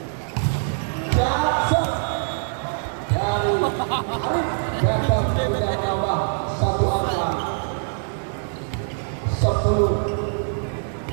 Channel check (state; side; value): silent; left; digital silence